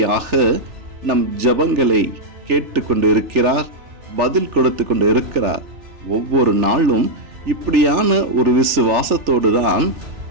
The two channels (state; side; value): late; left; 3.4 ms